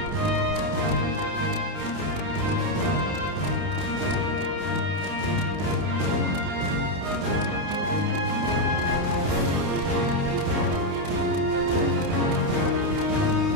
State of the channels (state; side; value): late; left; 29 ms